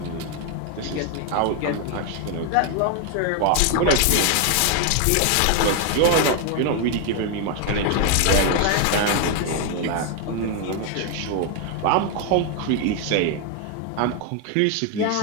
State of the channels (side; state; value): both; different; correlation 0.01